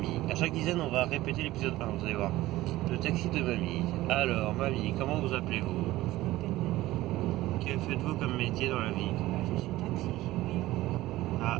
À chaque dizaine, on va répéter l'épisode 1, vous allez voir. Le taxi de mamie. Alors, mamie, comment vous appelez-vous? Que faites-vous comme métier dans la vie? Je suis taxi, oui. Ah,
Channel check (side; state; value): left; quieter; 16.9 dB